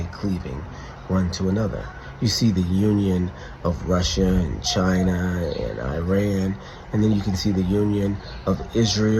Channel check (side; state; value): both; identical; correlation 1.00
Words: cleaving one to another. You see the union of Russia and China and Iran, and then you can see the union of